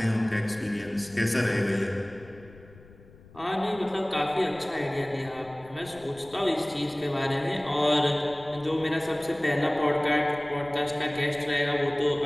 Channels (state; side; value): noise; left; rumble, 22 dB below the sound